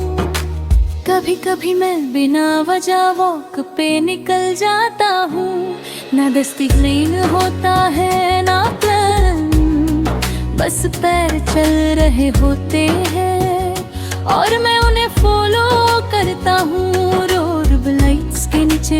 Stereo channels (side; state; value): both; identical; correlation 1.00